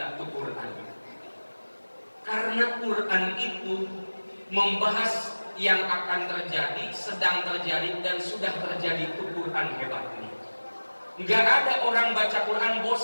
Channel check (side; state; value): both; inverted; correlation -1.00